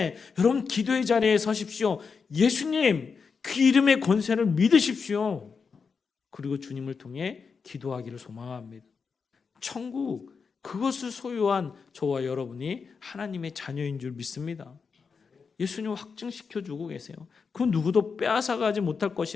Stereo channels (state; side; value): quieter; right; 5.4 dB